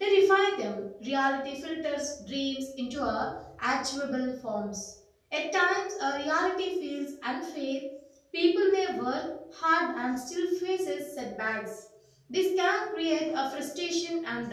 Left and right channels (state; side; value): identical; both; correlation 1.00